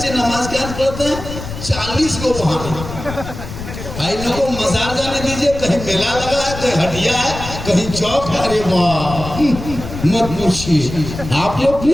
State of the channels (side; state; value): left; noise; rumble, 9 dB below the sound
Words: नमाज क्या पढ़ते हैं 40 को वहां। इन लोगों को मजार जाने दीजिए, कहीं मेला लगा है, कहीं हटिया है, कहीं चौक है। अरे वाह, मत पूछिए, आप लोग भी,